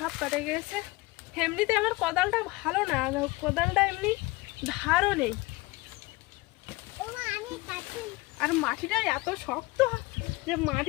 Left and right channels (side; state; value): right; quieter; 21.9 dB